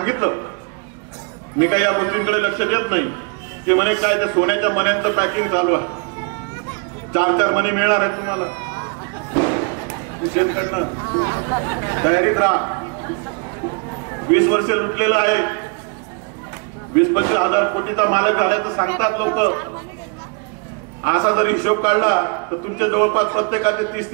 मी काही या गोष्टींकडे लक्ष देत नाही, ते म्हणे काय त्या सोन्याच्या मण्यांचं पॅकिंग चालू आहे, 4-4 मणी मिळणार आहेत तुम्हाला, शेतकऱ्यांना तयारीत राहा। 20 वर्ष लुटलेलं आहे, 20-25 हजार कोटीचा मालक झाल्याचं सांगतात लोक। असा जर हिशोब काढला तर तुमच्या जवळपास प्रत्येकाचे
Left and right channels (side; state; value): left; quieter; 35.0 dB